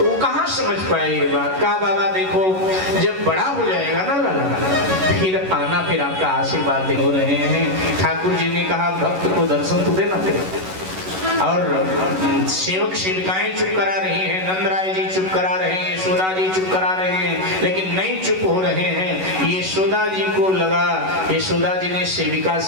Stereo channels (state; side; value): late; left; 11 ms